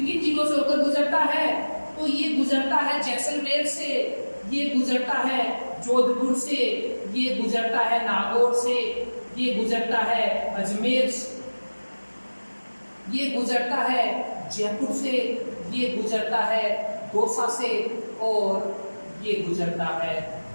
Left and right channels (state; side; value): inverted; both; correlation -1.00